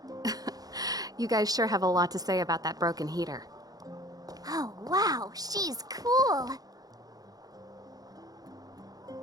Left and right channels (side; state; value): left; late; 0.18 ms